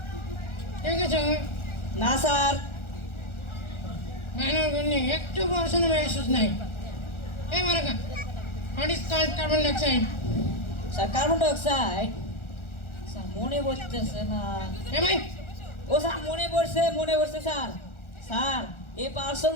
ঠিক আছে? না স্যার। বানর গুলি একটু পড়াশোনা মেসেজ নাই। মারাকা, what is called carbon dioxide? Sir carbon dioxide. Sir মনে পড়তেছে না। ভাই ও স্যার মনে পড়ছে sir. Sir a person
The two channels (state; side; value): late; right; 1.4 ms